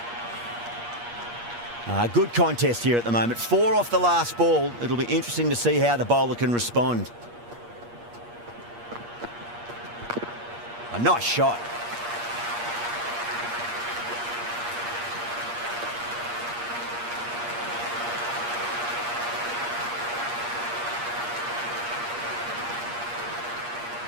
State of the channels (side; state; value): left; late; 8.5 ms